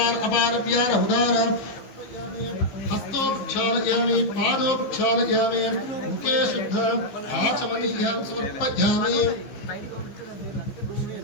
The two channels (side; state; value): right; late; 15 ms